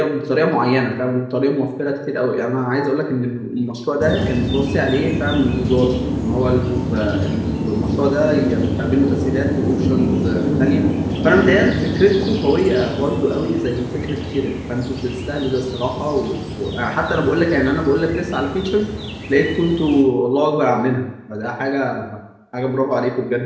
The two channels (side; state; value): both; identical; correlation 1.00